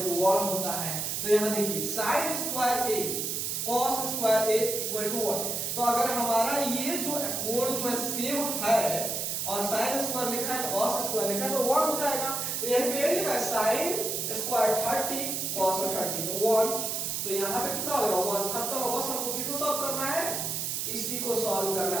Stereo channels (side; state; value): right; noise; hiss, 1 dB below the sound